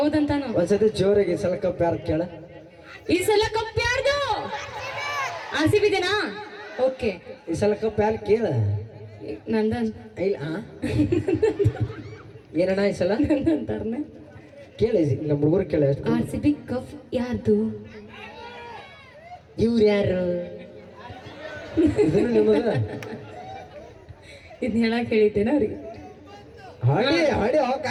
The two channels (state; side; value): identical; both; correlation 1.00